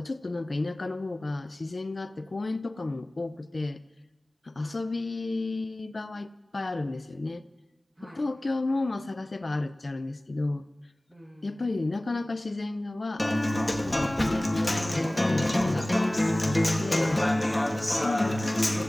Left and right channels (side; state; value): both; normal; correlation 0.98